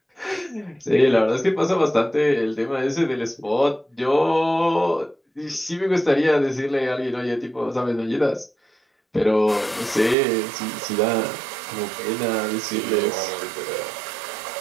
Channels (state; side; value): drops out; left; at 10.2 s